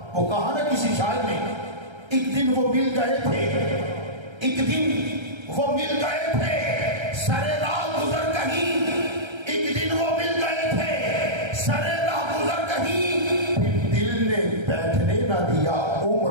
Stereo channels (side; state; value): left; late; 1.3 ms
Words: وہ کہاں نہ کسی شاعر نے. ایک دن وہ مل گئے تھے، ایک دن وہ مل گئے تھے سرے راہ گزر کہیں، ایک دن وہ مل گئے تھے سرے راہ گزر کہیں، پھر دل نے بیٹھنے نہ دیا